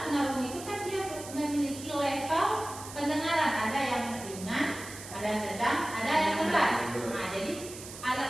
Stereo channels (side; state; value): right; noise; hiss, 13 dB below the sound